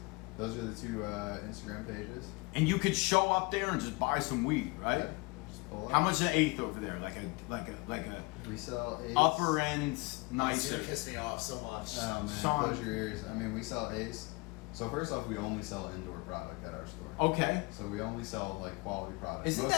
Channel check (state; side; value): quieter; right; 26.6 dB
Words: Those are the two Instagram pages. And you could show up there and just buy some weed, right? Yeah, just pull up. How much an eighth over there? Like a We sell eighths. upper end It's nicer. gonna piss me off so much. Oh man, Sean. close your ears. I mean, we sell eighths. So first off, we only sell indoor product at our store. Okay. So we only sell like quality products. Isn't Most